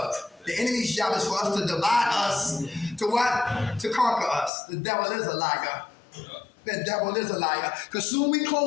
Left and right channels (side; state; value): right; drops out; at 4.5 s